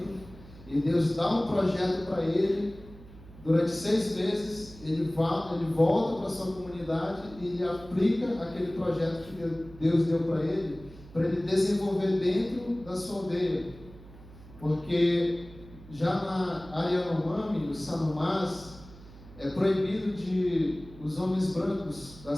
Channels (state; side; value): noise; right; hum, 19 dB below the sound